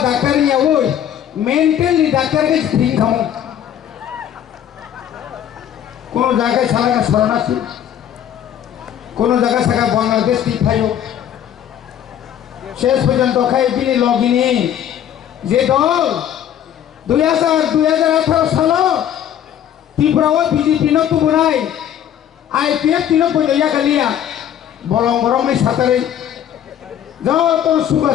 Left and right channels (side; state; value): right; quieter; 10.1 dB